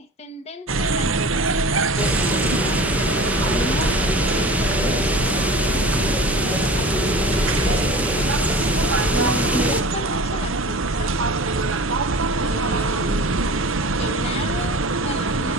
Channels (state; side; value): normal; both; correlation 0.38